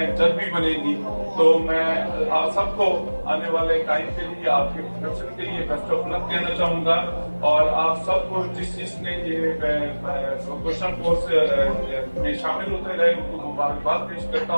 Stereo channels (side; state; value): both; inverted; correlation -1.00